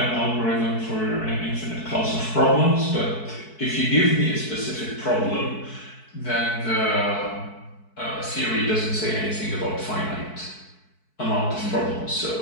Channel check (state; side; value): late; right; 4.6 ms